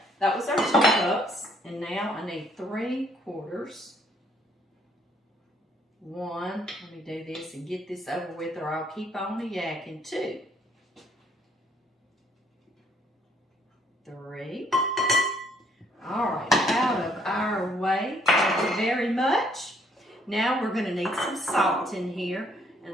that was our 2 cups, and now I need 3/4. 1, let me do this and get this over with or I'll keep on yakking. 2, 3. All right, out of our way. Thank you very much. Now we're going to need some salt in here,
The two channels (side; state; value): both; normal; correlation 0.66